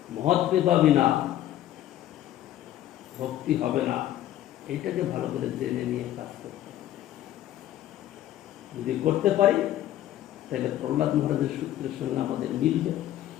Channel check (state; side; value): quieter; right; 12.9 dB